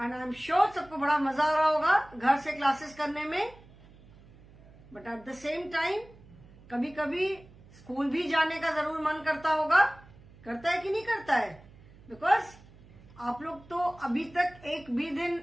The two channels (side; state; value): right; noise; hum, 23 dB below the sound